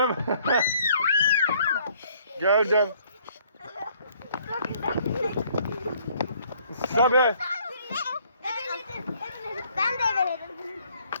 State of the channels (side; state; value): both; inverted; correlation -0.62